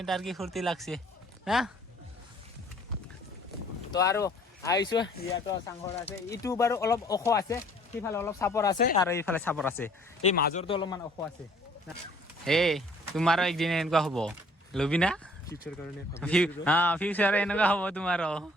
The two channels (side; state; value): both; normal; correlation 0.57